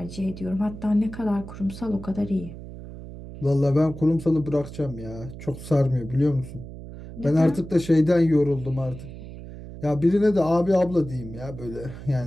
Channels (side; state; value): right; noise; hum, 13 dB below the sound